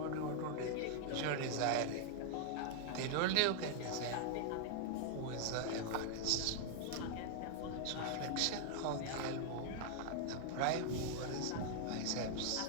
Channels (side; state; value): both; different; correlation -0.01